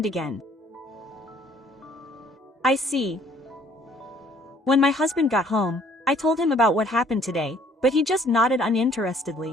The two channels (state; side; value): normal; both; correlation 0.60